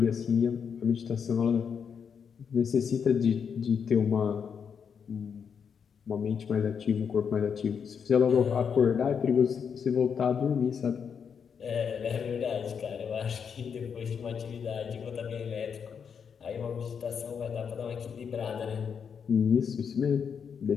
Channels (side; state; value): right; quieter; 6.9 dB